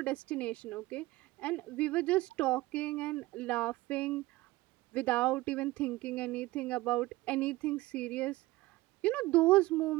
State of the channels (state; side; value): quieter; left; 19.1 dB